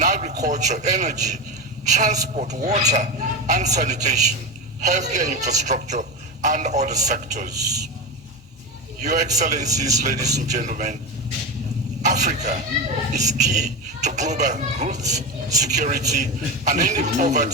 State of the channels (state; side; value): normal; both; correlation 0.19